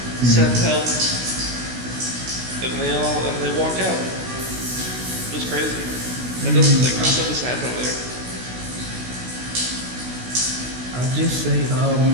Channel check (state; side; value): late; left; 16 ms